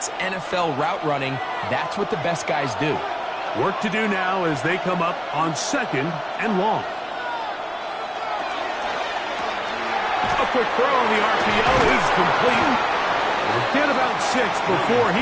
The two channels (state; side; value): identical; both; correlation 1.00